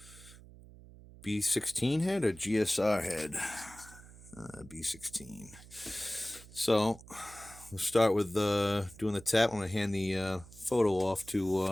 B16 head or GSR head. B16. So we'll start with doing the tap. I'm going to hand the photo off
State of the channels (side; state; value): right; noise; hum, 19 dB below the sound